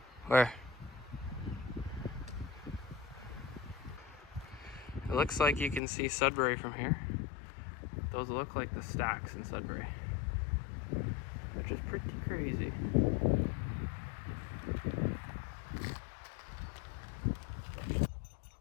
Where? It looks like you can see Sudbury from here. Those look like the stacks in Sudbury, which is pretty crazy.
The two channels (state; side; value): drops out; right; at 5.8 s